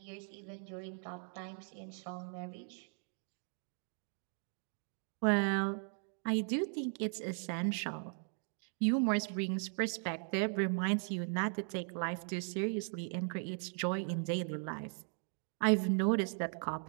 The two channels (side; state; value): left; silent; 52 dB below the other